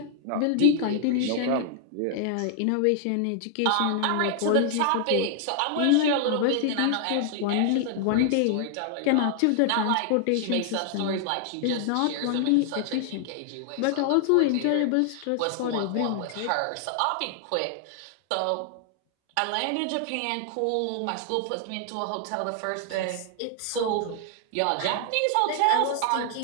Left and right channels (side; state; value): both; different; correlation 0.00